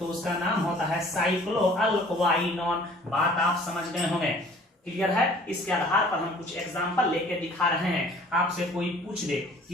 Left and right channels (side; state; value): both; normal; correlation 0.52